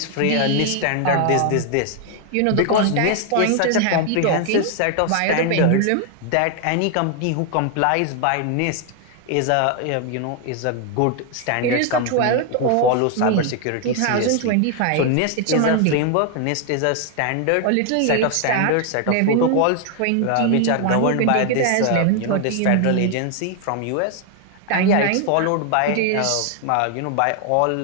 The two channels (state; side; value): different; both; correlation 0.00